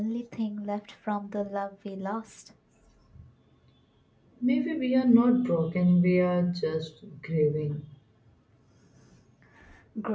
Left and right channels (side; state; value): both; identical; correlation 1.00